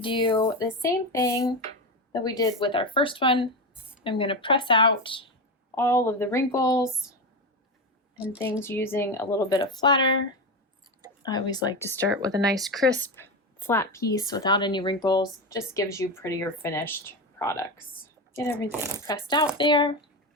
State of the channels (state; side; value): normal; both; correlation 0.17